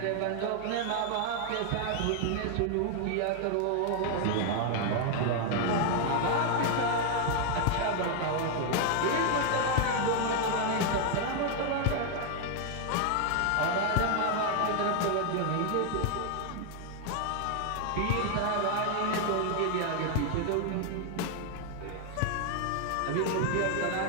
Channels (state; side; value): different; both; correlation 0.00